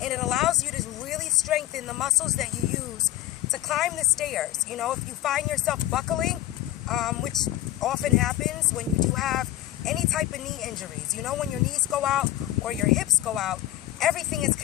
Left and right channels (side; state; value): right; quieter; 14.6 dB